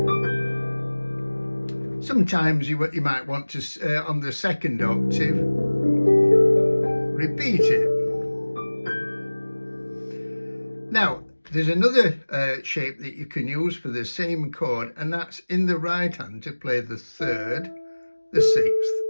Sometimes you might want to, on the second octave, repeat it. Now, there's another shape that you can use for the same chord, and that's in the right hand to play the 3rd, the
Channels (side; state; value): both; inverted; correlation -1.00